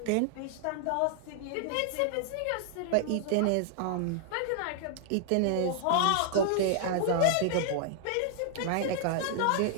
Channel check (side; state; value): both; different; correlation -0.01